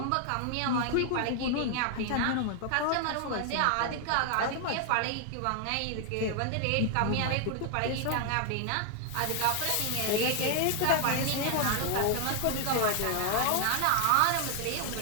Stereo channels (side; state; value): both; different; correlation 0.00